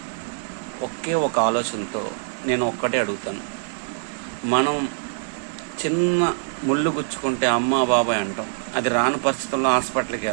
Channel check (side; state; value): left; silent; digital silence